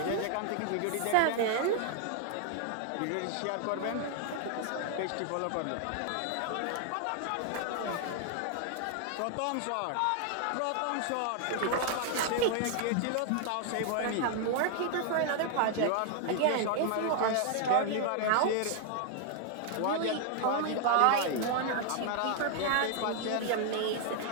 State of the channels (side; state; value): both; different; correlation 0.00